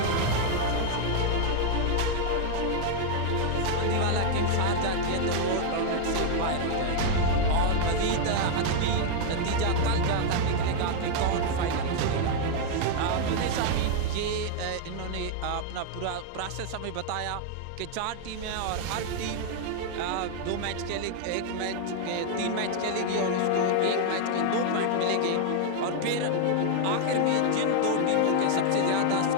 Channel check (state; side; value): different; both; correlation 0.00